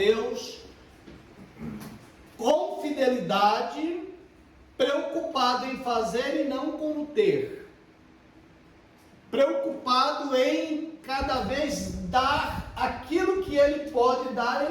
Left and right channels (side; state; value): both; identical; correlation 1.00